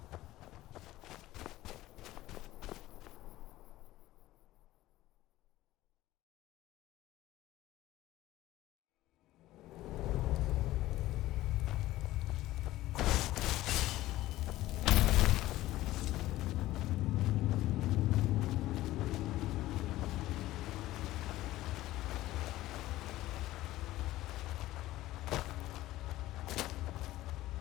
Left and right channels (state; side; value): quieter; right; 16.2 dB